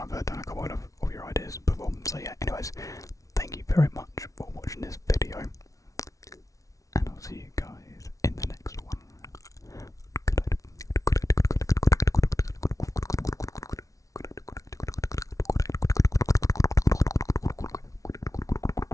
I've done a couple of your ideas before. So yeah, anyways, thank you very much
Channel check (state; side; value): late; right; 0.17 ms